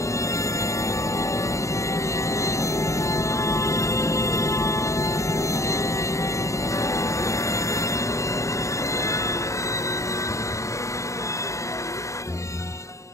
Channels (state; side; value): late; right; 0.15 ms